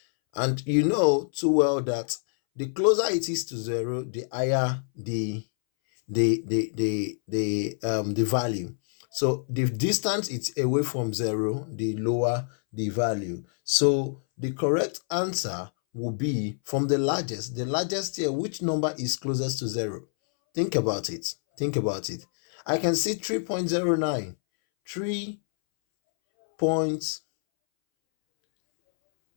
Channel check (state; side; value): silent; right; 60 dB below the other